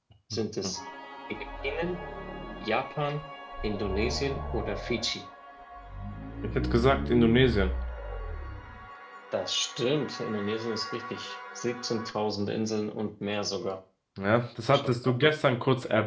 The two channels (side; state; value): both; identical; correlation 1.00